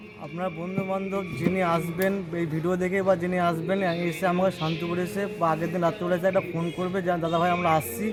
আপনার বন্ধুবান্ধব যিনি আসবেন এই ভিডিও দেখে বা যিনি আসবেন এসে আমাকে শান্তিপুরে এসে বা আগের দিন রাত্রিবেলা এসে একটা ফোন করবে যে দাদাভাই আমরা আসছি,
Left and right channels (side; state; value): both; identical; correlation 1.00